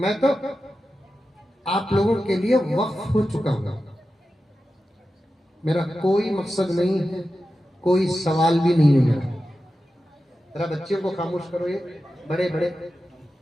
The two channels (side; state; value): both; normal; correlation 0.92